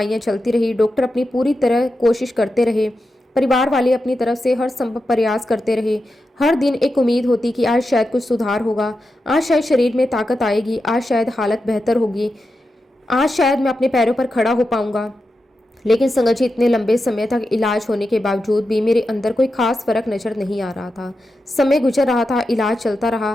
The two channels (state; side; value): normal; both; correlation 0.89